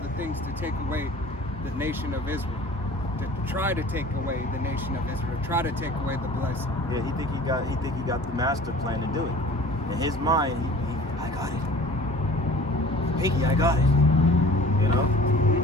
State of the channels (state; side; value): normal; both; correlation 0.45